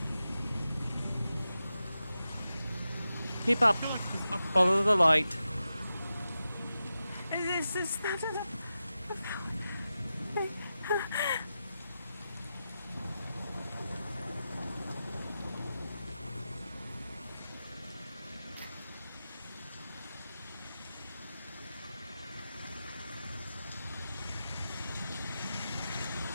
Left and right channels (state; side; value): inverted; both; correlation -0.91